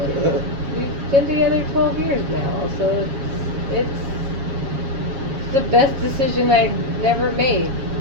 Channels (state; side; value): late; left; 7.3 ms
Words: And we've been together 12 years now, so it's the best decision I never made.